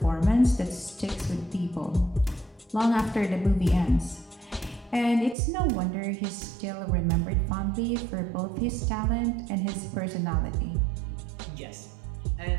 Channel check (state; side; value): drops out; left; at 5.4 s